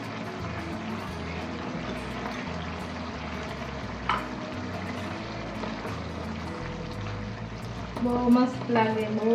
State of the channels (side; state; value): both; identical; correlation 1.00